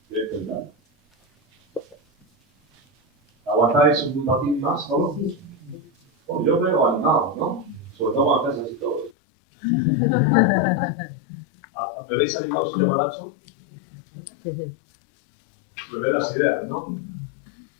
Voy a intentar. ¿Aguantáis un ratín más solo? Bueno, yo veo animados, ¿no? Sobre todo cuando estáis así todos. ¿Me veis animados, señor Manacho? Me ve las ideas, ¿no?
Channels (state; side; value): drops out; right; at 9.1 s